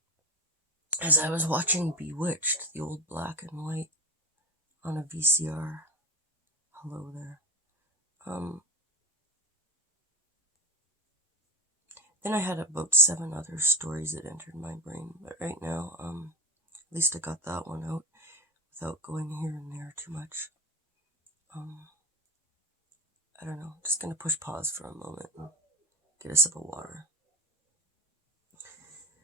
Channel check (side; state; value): both; normal; correlation 0.22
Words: as I was watching Bewitched, the old black and white, on a VCR. Hello there. Then I had about 7 other stories that entered my brain, but right now, at least I got that one out without going here and there too much. I don't know, just gonna push pause for a moment and get a sip of water.